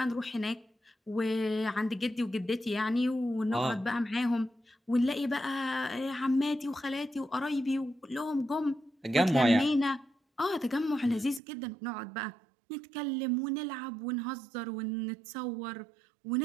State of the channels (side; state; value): left; drops out; at 11.4 s